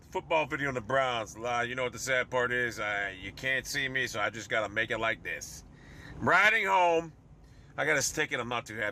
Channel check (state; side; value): identical; both; correlation 1.00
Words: football video on the Browns. You know what the sad part is? You can't see me, so I just got to make it like this. I'm riding home. I got a stick it. I'm not too